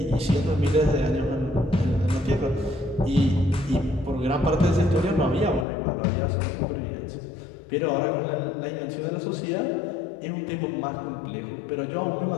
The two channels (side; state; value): right; drops out; at 5.7 s